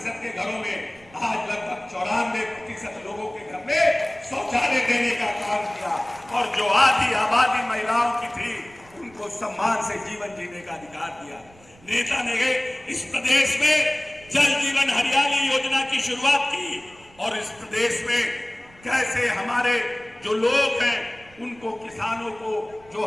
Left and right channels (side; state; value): right; noise; rumble, 26 dB below the sound